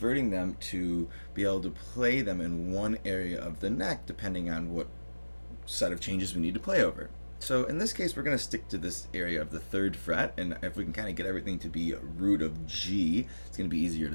them to be able to play them in one area of the neck, depending on what set of changes we need to play over. So in this case, we're going to stick to this area of the 3rd fret, and if we can kind of get everything to be a root of G, it's going to be easier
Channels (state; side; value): inverted; both; correlation -1.00